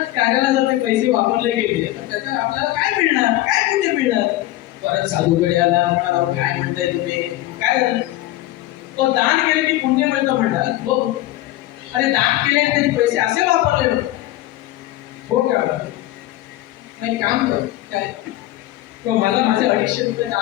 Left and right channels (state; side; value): quieter; right; 15.9 dB